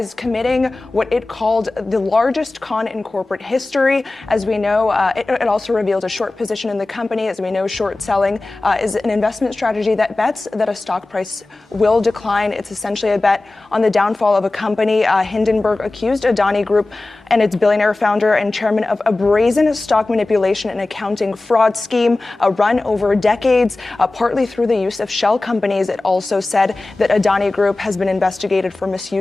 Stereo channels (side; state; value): right; quieter; 3.0 dB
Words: committing what it called the largest con in corporate history. As we know, it also revealed a short position in the company. As we know, short-selling is an investment strategy that bets that a stock price will decline. It's essentially a bet on the downfall of a company. Hindenburg accused Adani Group and its billionaire founder and chairman of a brazen stock manipulation and accounting fraud scheme run over decades, partly through the use of shell companies. It also said that Adani Group has been investigated for